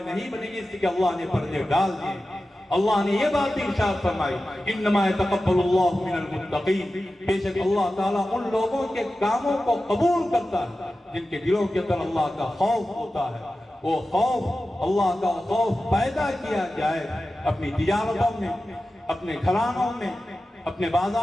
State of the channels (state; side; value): normal; both; correlation 0.94